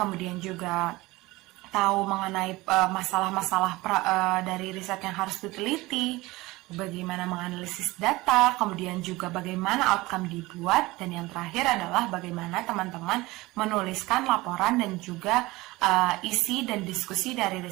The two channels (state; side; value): quieter; left; 20.5 dB